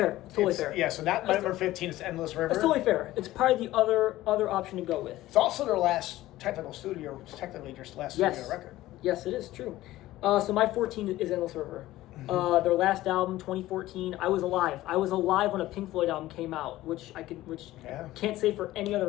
It's totally fair. Yeah. So that number 15 is Endless River. It's totally fair. It's probably the other option to go with. It's also their last technically studio record. Yes, it is true. So my 14 is Endless River. Mm-hmm. Their last album, 2014. I was alive. When a Pink Floyd album came out, which can't say for any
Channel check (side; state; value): right; quieter; 16.0 dB